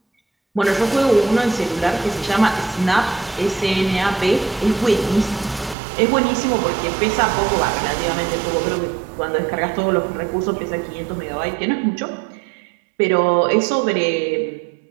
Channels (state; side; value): drops out; left; at 5.8 s